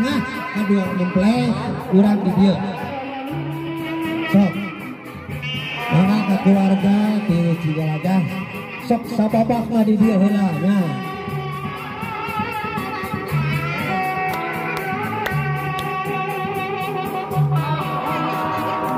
kadua mempleh urang di dieu sok mangga ka keluarga ti Cigalaga sok sababakna di dieu heula nya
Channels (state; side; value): identical; both; correlation 1.00